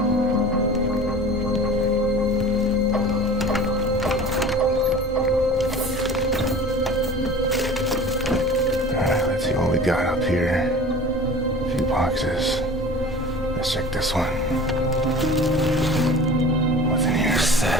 Alright, let's see what we got up here. A few boxes. Let's check this one. What's in here?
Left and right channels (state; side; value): normal; both; correlation 0.40